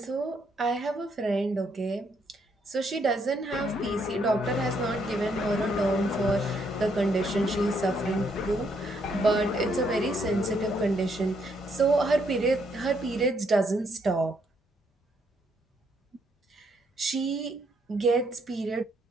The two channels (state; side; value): normal; both; correlation 0.73